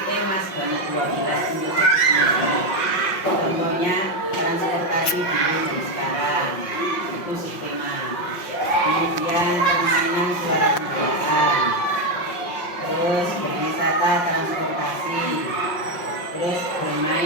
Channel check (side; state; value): right; late; 5.6 ms